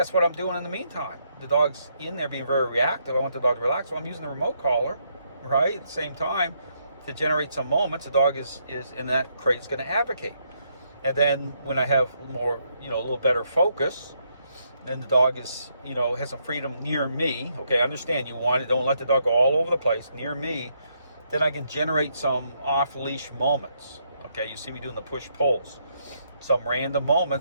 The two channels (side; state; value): both; inverted; correlation -0.75